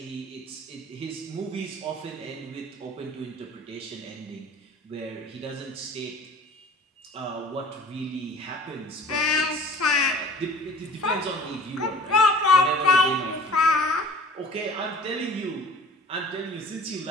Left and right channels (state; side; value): normal; both; correlation 0.45